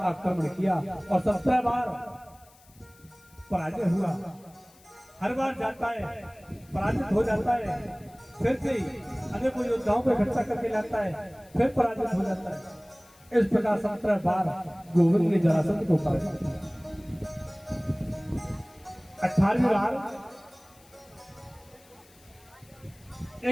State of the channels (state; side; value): noise; left; hiss, 27 dB below the sound